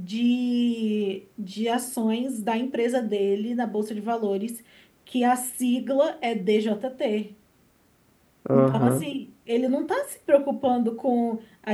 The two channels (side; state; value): both; identical; correlation 1.00